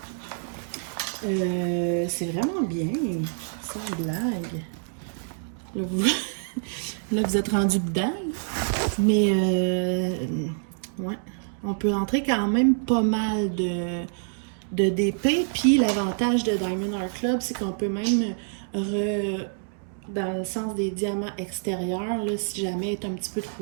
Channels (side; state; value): left; silent; digital silence